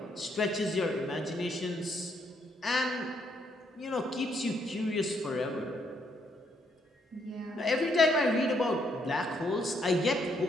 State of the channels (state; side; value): normal; both; correlation 0.73